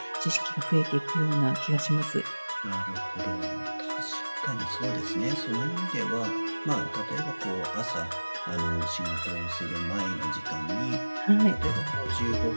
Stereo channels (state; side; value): inverted; both; correlation -1.00